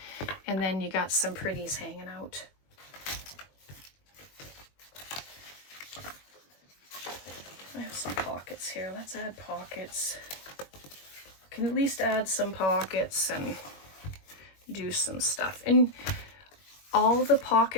And then you got some pretties hanging out. I have some pockets here. Let's add pockets. Can at least add some pockets and do some stuff. And all the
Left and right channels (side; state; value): right; late; 21 ms